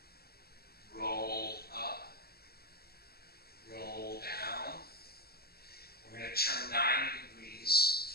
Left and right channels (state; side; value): late; right; 0.45 ms